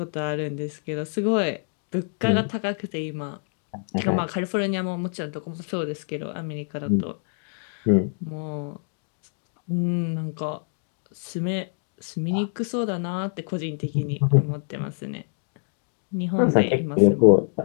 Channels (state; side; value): silent; right; digital silence